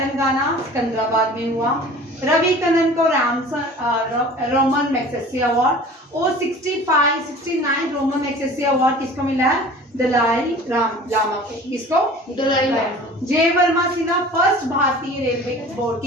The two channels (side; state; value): both; normal; correlation 0.43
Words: सिकंदराबाद में हुआ। रवि कनन को रोमन मैग्सेसे अवार्ड और 69 रोमन मैग्सेसे अवार्ड किसको मिला है? दलाई लामा को। किसको? दलाई लामा। जय वर्मा सिन्हा फर्स्ट भारतीय रेलवे बोर्ड